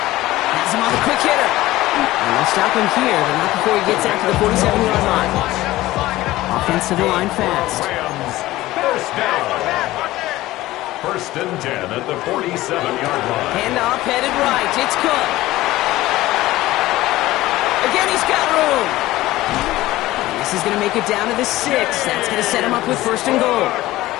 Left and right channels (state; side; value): quieter; right; 17.0 dB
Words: Has him on the quick hitter. And they'll stop him here, but not before he gets out to the 47-yard line. Offensive line fast. Rams, first down. 1st and 10 at the 47-yard line. Handoff headed right. It's Cook. Again, he's got room. And this is going to make it down to the 6. That's going to set him up with 1st and goal.